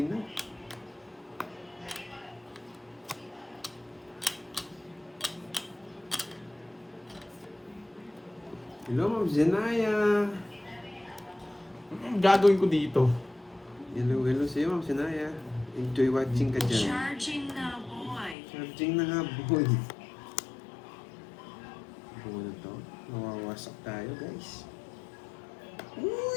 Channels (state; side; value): drops out; right; at 18.4 s